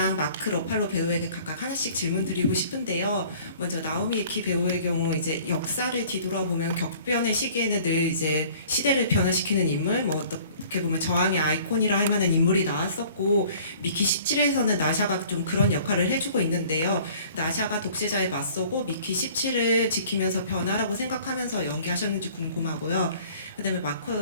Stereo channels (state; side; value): inverted; both; correlation -0.52